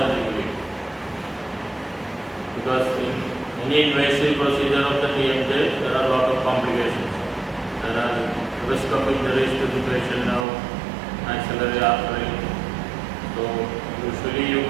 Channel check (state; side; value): drops out; left; at 10.5 s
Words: because in any invasive procedure of the TMJ there are a lot of complications. There are risk of injuries to the facial nerve, maxillary artery. So usually you